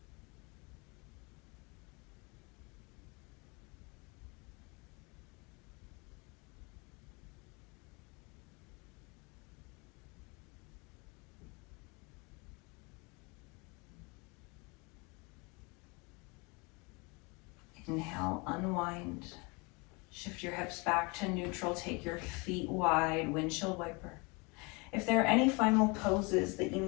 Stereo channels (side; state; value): right; quieter; 28.9 dB